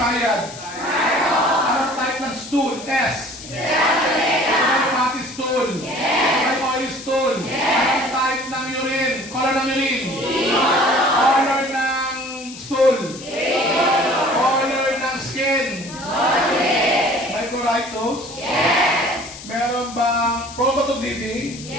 Anong type ng stool? S. May fatty stool? Yes. May oily stool? Yes. Anong type ng urine? Color ng urine? Meron bang prone to bleeding?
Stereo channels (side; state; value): left; noise; hiss, 15 dB below the sound